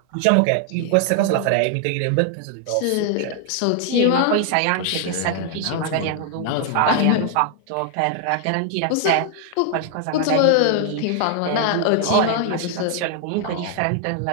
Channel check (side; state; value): both; different; correlation 0.00